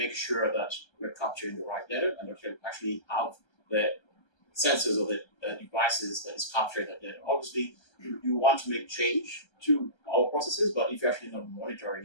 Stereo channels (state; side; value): late; right; 1.3 ms